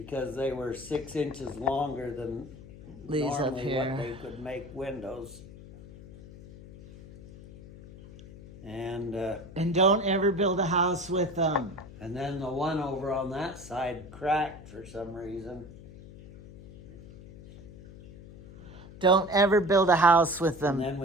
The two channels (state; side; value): noise; left; hum, 17 dB below the sound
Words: they were 6 inches longer than These up normally here. what they could make windows. And don't ever build a house with them. and then the one over on that side cracked for some reason. Don't ever build a house with them, And then